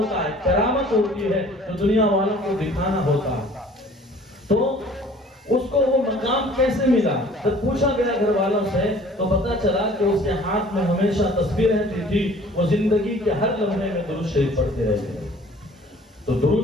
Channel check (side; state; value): both; normal; correlation 0.51